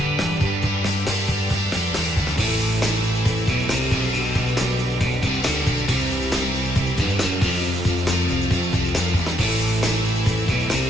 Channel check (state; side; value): normal; both; correlation 0.74